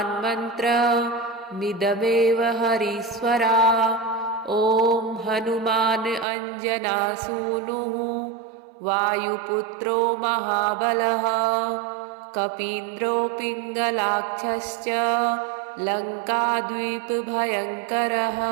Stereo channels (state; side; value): drops out; left; at 6.2 s